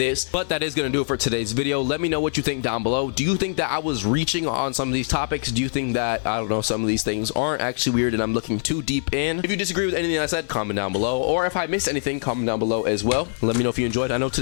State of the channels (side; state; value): right; silent; 63 dB below the other